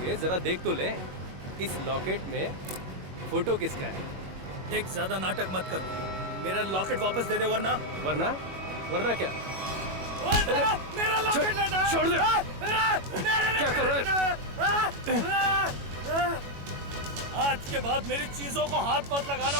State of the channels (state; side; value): late; left; 21 ms